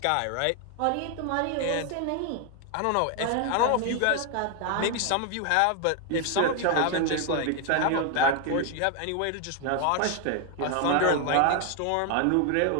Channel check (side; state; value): both; different; correlation 0.01